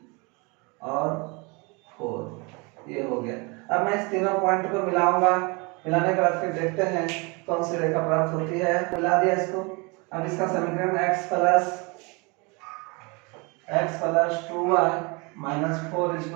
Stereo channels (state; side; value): quieter; left; 29.0 dB